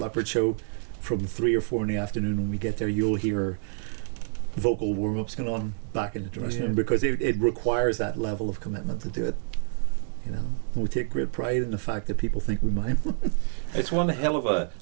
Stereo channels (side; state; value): left; silent; digital silence